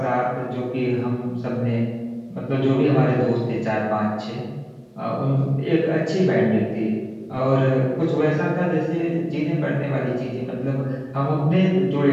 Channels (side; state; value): both; identical; correlation 1.00